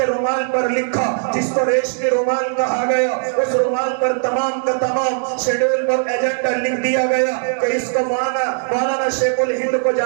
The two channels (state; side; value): silent; left; digital silence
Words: رومال پر لکھا، جس کو ریشمی رومال کہا گیا۔ اس رومال پر تمام کا تمام شیڈول پر ایجنڈا لکھ دیا گیا کہ اس کو مولانا شیخ الہند کو جا